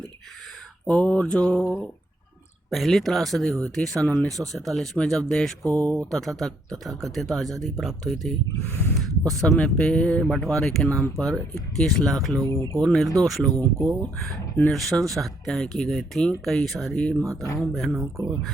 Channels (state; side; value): normal; both; correlation 0.71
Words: और जो पहली त्रासदी हुई थी सन 1947 में, जब देश को तथाकथित आज़ादी प्राप्त हुई थी, उस समय पे बंटवारे के नाम पर 21 लाख लोगों को, निर्दोष लोगों को नृशंस हत्याएं की गई थी। कई सारी माताओं बहनों को